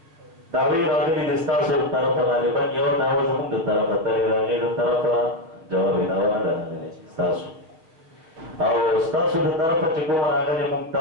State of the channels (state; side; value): late; left; 6.2 ms